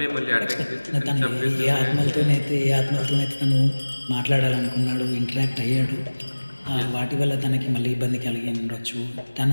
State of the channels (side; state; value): both; inverted; correlation -1.00